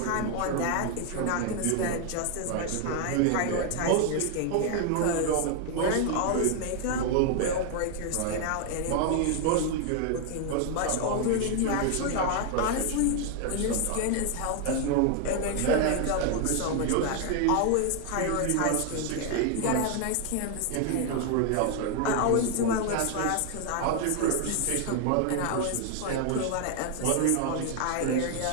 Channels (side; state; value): both; different; correlation 0.00